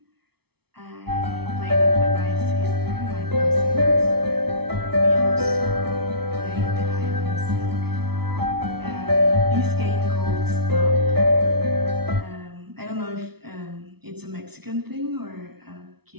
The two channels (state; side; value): late; left; 0.97 ms